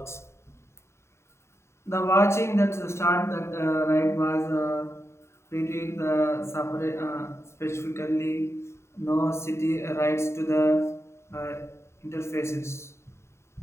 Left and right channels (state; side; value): late; right; 0.13 ms